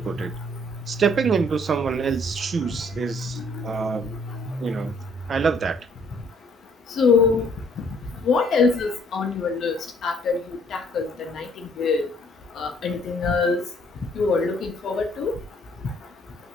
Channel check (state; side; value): normal; both; correlation 0.62